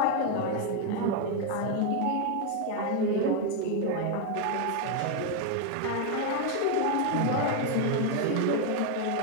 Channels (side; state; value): both; different; correlation 0.01